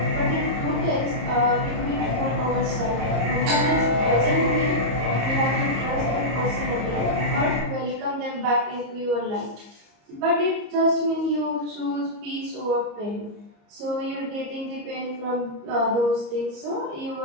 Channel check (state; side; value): late; left; 34 ms